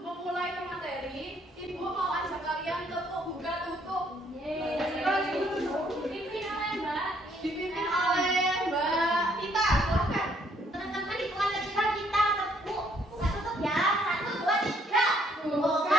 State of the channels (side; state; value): both; normal; correlation 0.67